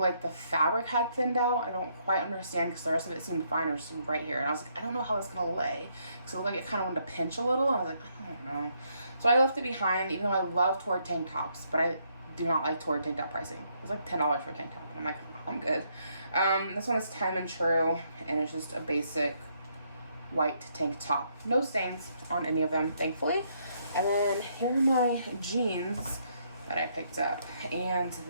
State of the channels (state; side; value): inverted; both; correlation -0.73